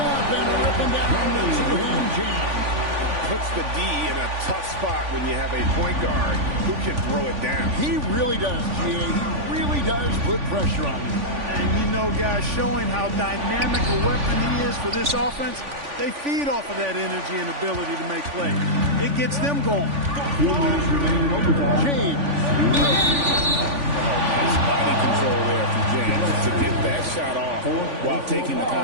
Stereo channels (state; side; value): late; left; 3.5 ms